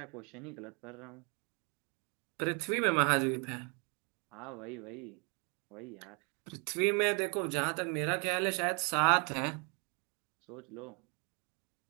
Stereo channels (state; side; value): quieter; left; 34.6 dB